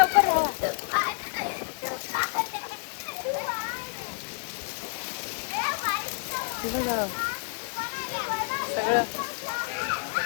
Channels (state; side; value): silent; right; digital silence